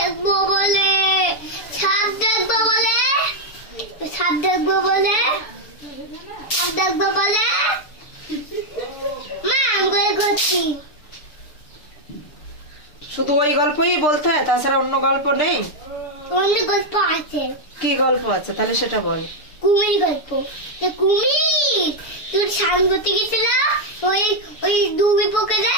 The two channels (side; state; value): right; late; 7.0 ms